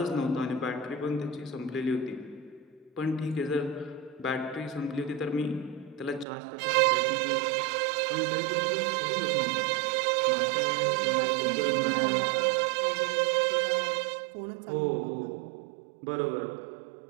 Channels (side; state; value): left; drops out; at 6.2 s